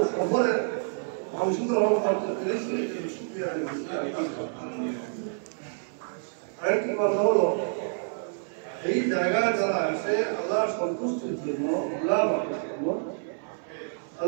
শহরে অংশগ্রহণ করতে পেরেছি। আরেকটি কথা হলো, এই জায়গায় যারা আসে আল্লাহ সন্তুষ্টির জন্য,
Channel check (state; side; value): silent; left; 59 dB below the other